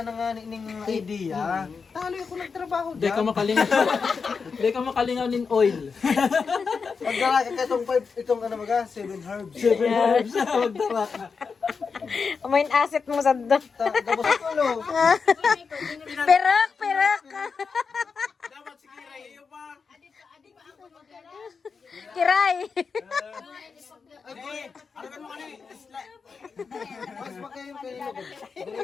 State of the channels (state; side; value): quieter; right; 5.3 dB